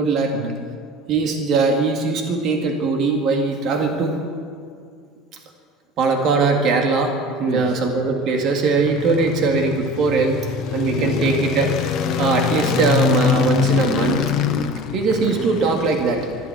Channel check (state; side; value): normal; both; correlation 0.40